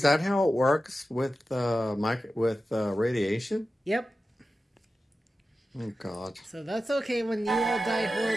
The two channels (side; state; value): both; normal; correlation 0.93